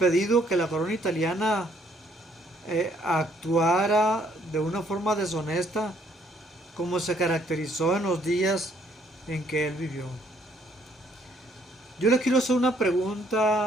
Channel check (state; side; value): normal; both; correlation 0.66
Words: que la corona italiana actuara de una forma deshonesta como se caracterizó en los días en que él vivió. Yo les quiero hacer una